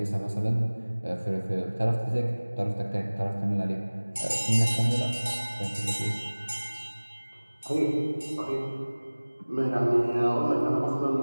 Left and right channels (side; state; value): both; inverted; correlation -1.00